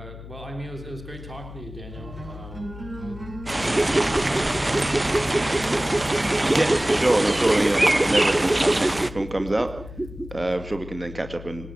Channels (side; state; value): left; noise; hum, 14 dB below the sound